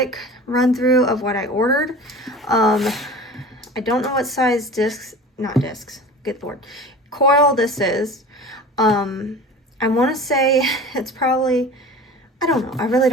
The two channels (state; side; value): normal; both; correlation 0.38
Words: run through of what I ordered. I don't know what size coil this is. I want to say it's probably, I don't know, I really